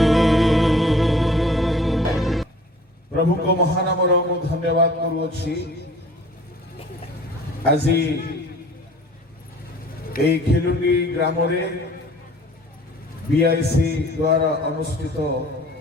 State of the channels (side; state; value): both; normal; correlation 0.49